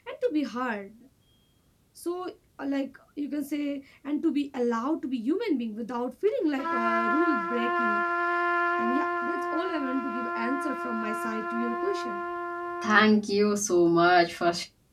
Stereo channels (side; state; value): both; identical; correlation 1.00